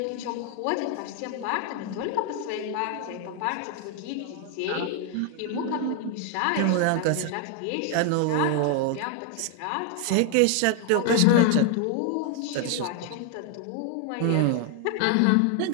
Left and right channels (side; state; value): both; different; correlation 0.00